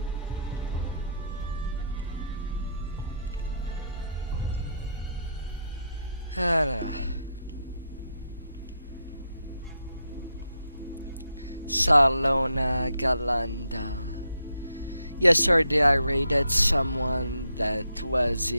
Salona Galanda. Yesterday I raided someone that was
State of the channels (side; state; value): both; inverted; correlation -0.77